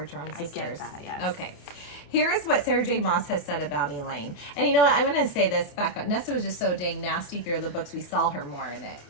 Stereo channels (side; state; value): right; late; 28 ms